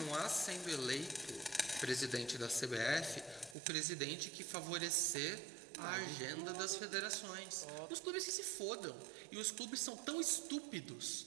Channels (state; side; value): drops out; left; at 3.6 s